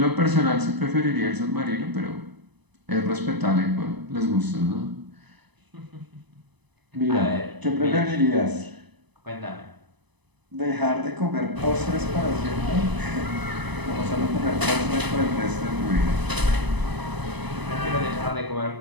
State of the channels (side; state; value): left; late; 1.0 ms